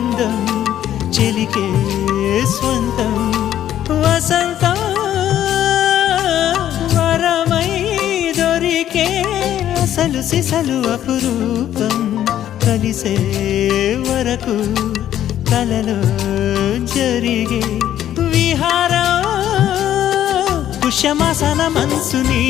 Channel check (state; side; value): quieter; right; 11.4 dB